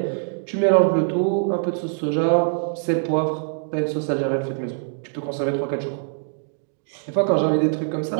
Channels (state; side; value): silent; left; digital silence